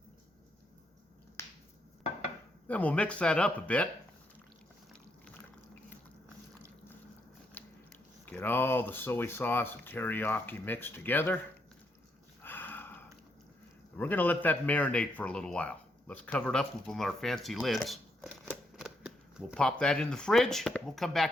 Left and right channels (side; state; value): both; normal; correlation 0.77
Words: Then we'll mix that up a bit. Get all the soy sauce and teriyaki mixed together. We're going to let that marinate for a little while. Let's cover it up with one of our fancy lids. We'll pop that in the fridge. We'll come